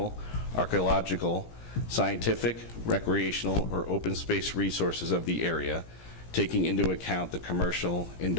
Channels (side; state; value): right; late; 17 ms